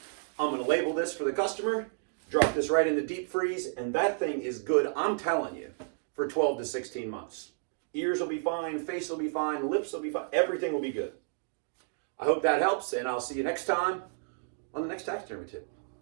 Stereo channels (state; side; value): silent; left; digital silence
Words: I'm going to label this for the customer, drop this right in the deep freeze, and that thing is good, I'm telling you, for 12 to 16 months. Ears will be fine, face will be fine, lips will be fine, everything will be good. I hope that helps, and I'll see you next time on the next taxidermy tip.